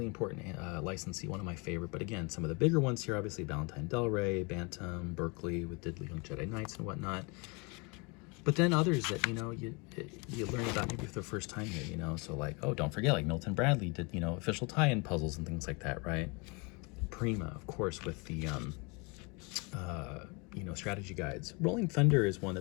important licensee, one of my favorite. But again, some of the bigger ones here, obviously Valentine Del Rey, Bantam, Berkeley with Diddley Young Jedi Knights and whatnot. But then others that, you know, you learn about maybe for the first time here, you know. So like, oh, don't forget, like Milton Bradley did, you know, official tie-in puzzles and things like that, right? Prima, of course, with the strategy guides. Rolling Thunder is one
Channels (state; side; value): quieter; right; 30.1 dB